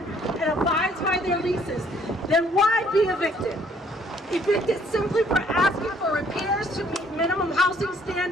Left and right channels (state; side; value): normal; both; correlation 0.62